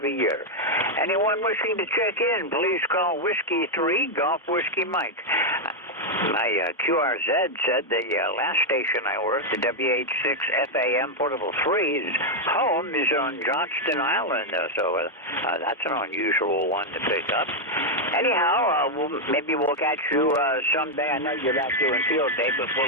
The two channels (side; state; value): both; normal; correlation 0.00